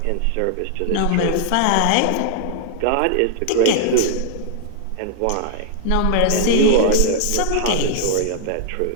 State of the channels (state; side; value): different; both; correlation -0.01